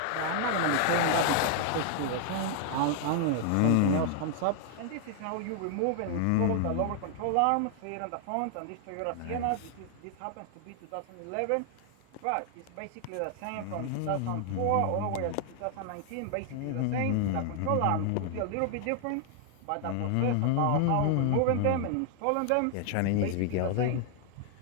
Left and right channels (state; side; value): different; both; correlation 0.00